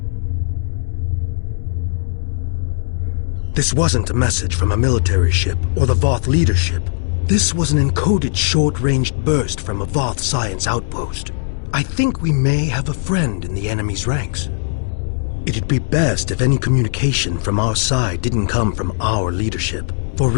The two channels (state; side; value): silent; right; digital silence